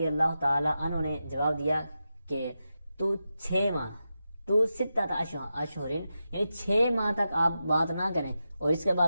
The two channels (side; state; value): both; inverted; correlation -0.90